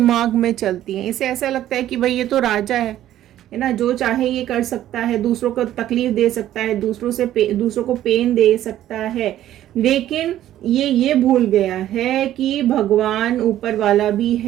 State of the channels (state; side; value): quieter; left; 12.7 dB